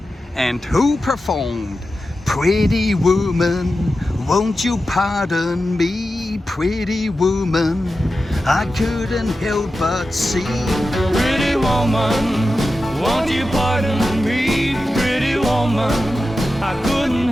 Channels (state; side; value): normal; both; correlation 0.92